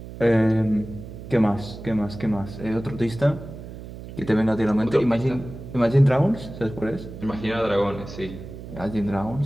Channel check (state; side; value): noise; right; hum, 12 dB below the sound